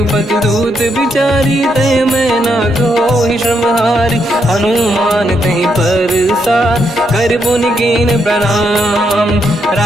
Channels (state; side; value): normal; both; correlation 0.78